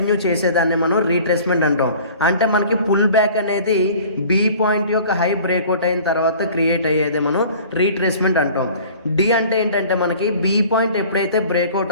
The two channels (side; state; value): both; inverted; correlation -0.46